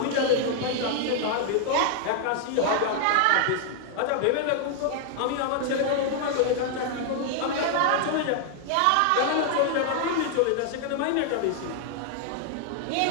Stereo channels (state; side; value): different; both; correlation 0.00